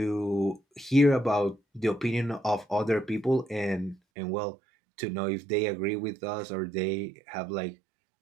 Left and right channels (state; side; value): drops out; left; at 4.0 s